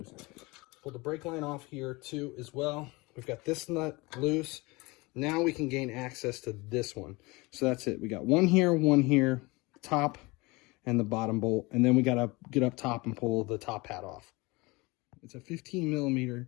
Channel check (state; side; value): quieter; right; 24.2 dB